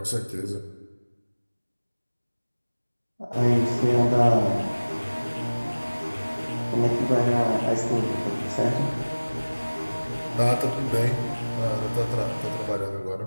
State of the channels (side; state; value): both; inverted; correlation -1.00